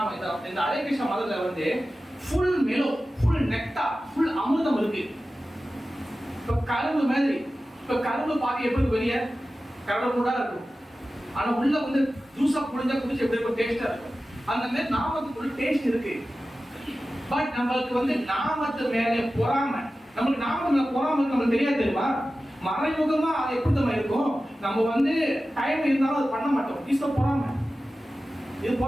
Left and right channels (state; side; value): normal; both; correlation 0.95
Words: இந்த ஹரே கிருஷ்ண மதத்துல வந்து full mellow, full nectar, full அமிர்தம் இருக்கு. இப்ப கரும்பு மாதிரி, இப்ப கரும்பு பாக்க எப்படி வெளியே கரும்பு கூட இருக்கும், ஆனா உள்ள வந்து ஜூஸா புழிஞ்சா குடிச்சு எப்படி இருக்கும், டேஸ்டா இருக்கும். அந்த மாதிரி நாமத்துக்குள்ள டேஸ்ட் இருக்கு. பட் நம்மளுக்கு வந்து நாமத்து மேல பொறாமை, நம்மளுக்கு நாமத்து மேல பொறாமை நம்மளுக்கு தெரியாது தெரியுமா? மறைமுகமா அது எப்படி தான் இருக்கும். நம்ம வந்து டைம் இருந்தாலும் அது பண்ண மாட்டோம். இது பொறாமை, இது